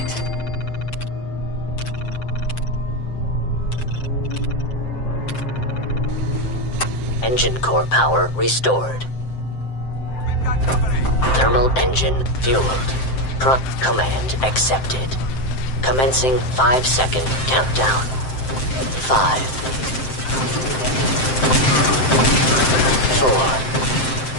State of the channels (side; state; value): right; late; 7.7 ms